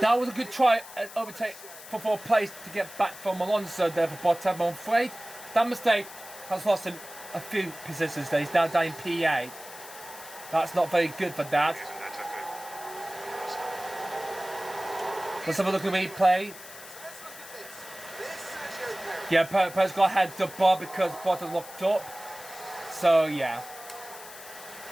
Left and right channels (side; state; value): left; noise; hiss, 15 dB below the sound